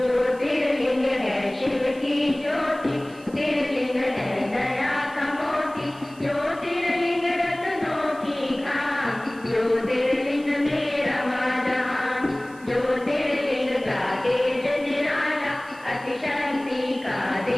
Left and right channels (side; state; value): right; noise; hiss, 25 dB below the sound